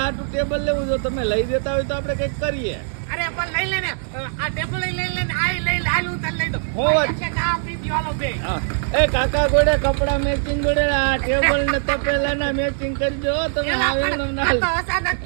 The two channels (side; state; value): left; silent; digital silence